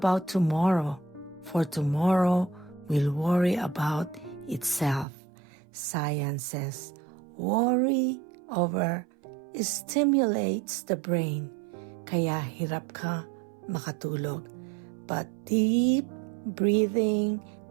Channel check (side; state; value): left; drops out; at 5.1 s